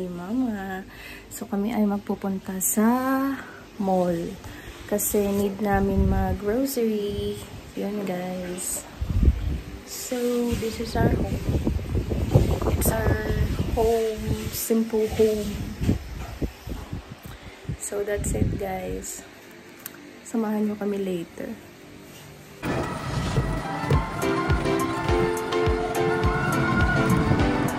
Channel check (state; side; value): identical; both; correlation 1.00